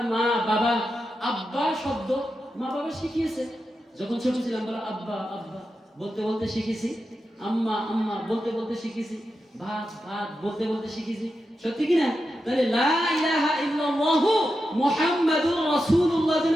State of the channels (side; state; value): both; normal; correlation 0.89